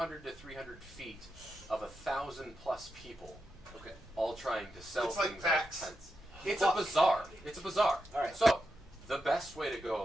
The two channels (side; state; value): both; normal; correlation 0.87